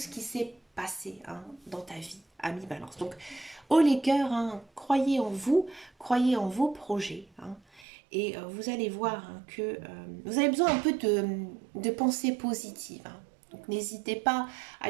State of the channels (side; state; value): left; drops out; at 7.9 s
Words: qui s'est passé hein, dans ta vie, ami Balance. Donc, haut les cœurs, hein, croyez en vous, croyez en vos projets. Hein, et vous allez voir hein, que vous avez besoin un peu de pensée positive. Hein. Donc, n'hésitez pas à